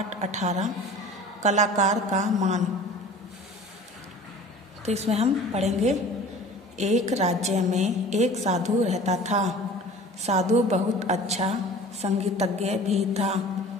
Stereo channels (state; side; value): normal; both; correlation 0.43